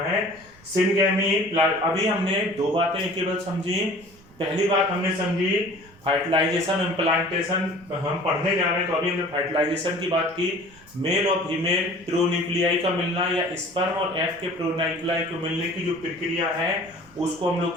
है। सिनगैमी, अभी हमने दो बातें केवल समझी। पहली बात हमने समझी फर्टिलाइजेशन इम्प्लांटेशन हम पढ़ने जा रहे हैं, तो अभी हमने फर्टिलाइजेशन की बात की। मेल और फीमेल प्रोन्यूक्लियाई का मिलना या स्पर्म और एग के प्रोन्यूक्लियाई को मिलने की जो प्रक्रिया है उसको हम लोग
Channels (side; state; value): right; noise; rumble, 25 dB below the sound